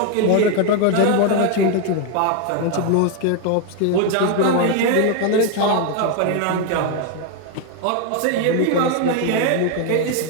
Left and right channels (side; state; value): both; different; correlation 0.01